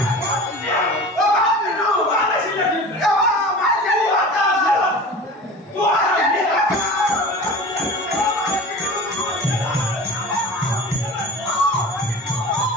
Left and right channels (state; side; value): normal; both; correlation 0.36